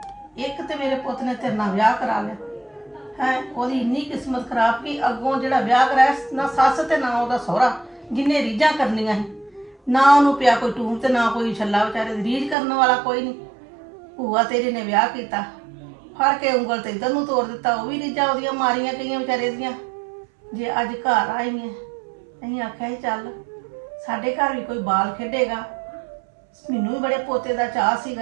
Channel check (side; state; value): left; drops out; at 12.6 s